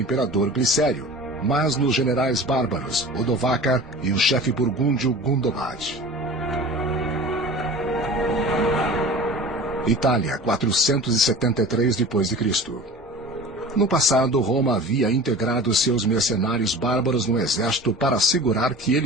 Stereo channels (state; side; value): normal; both; correlation 0.38